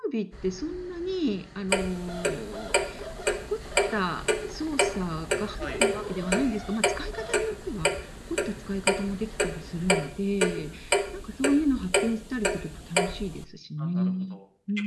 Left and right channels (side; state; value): both; identical; correlation 1.00